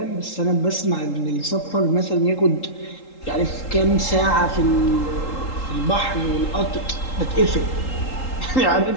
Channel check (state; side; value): late; right; 3.8 ms